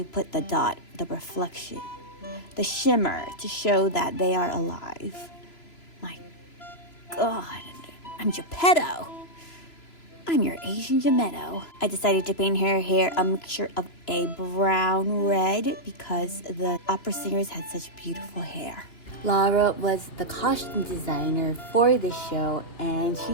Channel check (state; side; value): late; right; 3.0 ms